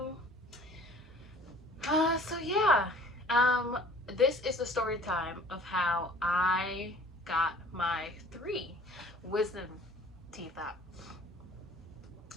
This is the story time of how I got my 3 wisdom teeth out.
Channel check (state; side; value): normal; both; correlation 0.50